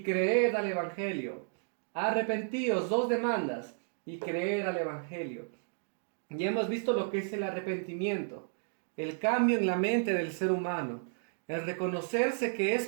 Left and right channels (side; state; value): left; silent; digital silence